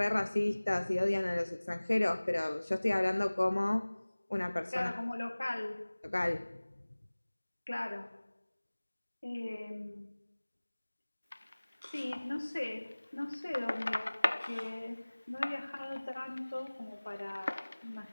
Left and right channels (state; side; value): inverted; both; correlation -1.00